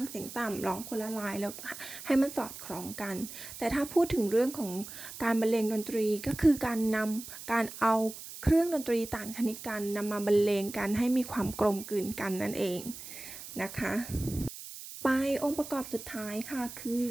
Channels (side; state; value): right; noise; hiss, 12 dB below the sound